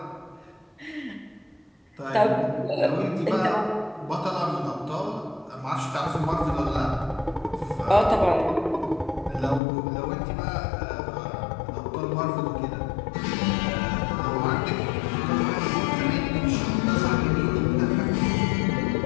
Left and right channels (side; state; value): right; drops out; at 9.6 s